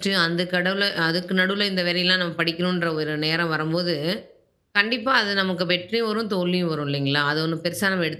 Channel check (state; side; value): identical; both; correlation 1.00